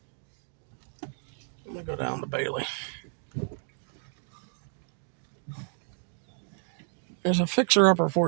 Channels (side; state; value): left; silent; digital silence